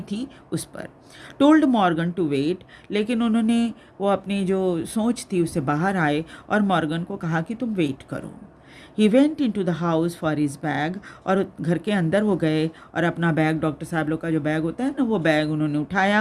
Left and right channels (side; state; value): both; identical; correlation 1.00